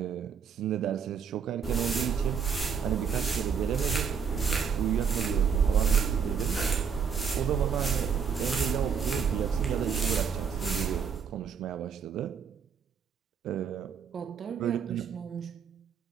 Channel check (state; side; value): quieter; left; 6.8 dB